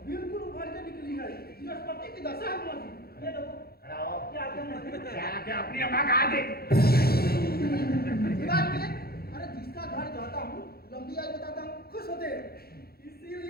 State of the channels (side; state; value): right; late; 0.45 ms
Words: बिल्कुल उभर के निकली है। बृहस्पति की दशा है मामा जी। ये देखो। खड़ा हो। क्या क्या मामा जी? क्या अपनी अम्मा का हाथ देख। ये बात के अरे जिसका घर जाता हूँ लंबी आयु बताता हूँ खुश होते हैं,